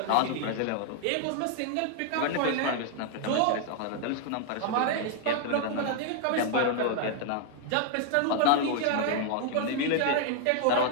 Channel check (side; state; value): both; different; correlation 0.00